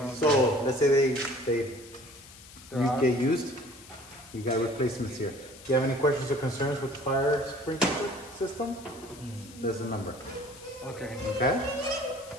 So, let's say they get used. You got replacements here. Do you have any questions or concerns with the fire sprinkler system? There's the number. Okay. Okay?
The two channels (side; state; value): left; noise; hiss, 19 dB below the sound